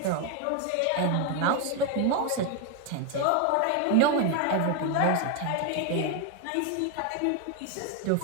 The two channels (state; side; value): different; both; correlation 0.01